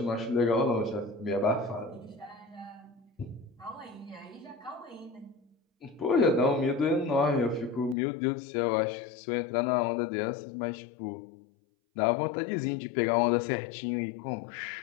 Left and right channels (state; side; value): drops out; right; at 8.0 s